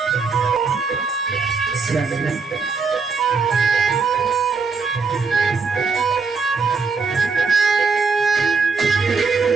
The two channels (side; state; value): left; quieter; 4.8 dB